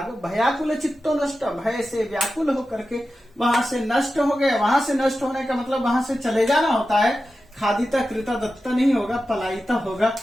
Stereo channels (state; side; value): normal; both; correlation 0.92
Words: भयाकुल चित्तो नष्ट, भय से व्याकुल होकर के वहां से नष्ट हो गए। वहां से नष्ट होने का मतलब वहां से चले जाना होता है, खादिता कृता दत्ता नहीं होगा, पलायिता होगा,